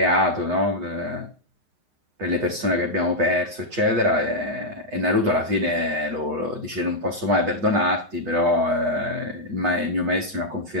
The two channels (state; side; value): late; left; 7.8 ms